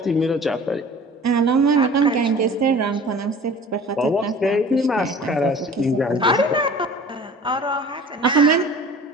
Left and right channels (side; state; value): both; normal; correlation 0.44